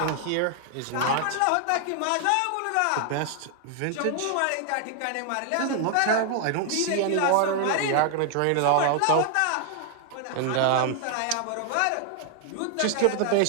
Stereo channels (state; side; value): different; both; correlation 0.00